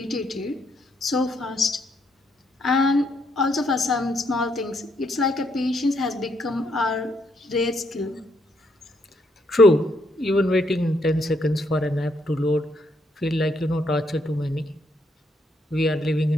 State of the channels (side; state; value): both; normal; correlation 0.74